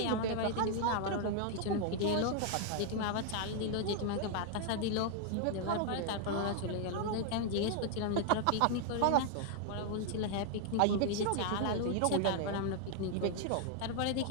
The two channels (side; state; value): both; different; correlation 0.00